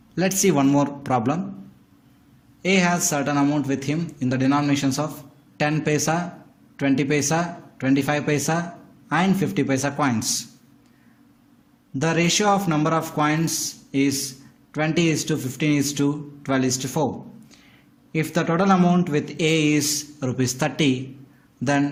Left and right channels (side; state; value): both; identical; correlation 1.00